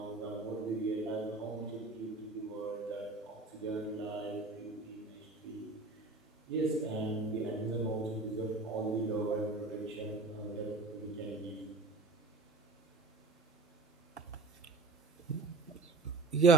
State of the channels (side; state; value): left; quieter; 3.6 dB